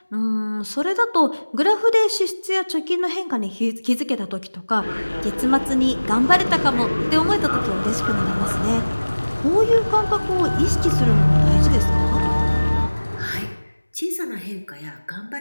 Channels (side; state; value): both; inverted; correlation -1.00